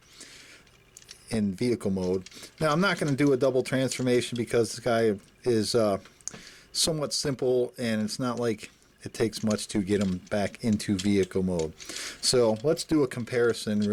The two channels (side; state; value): both; identical; correlation 1.00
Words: in vehicle mode. Now I'm not going to do a double transformation because this guy is somewhat simple, and it's not like it takes much to get him back into vehicle mode. So let's do a comparison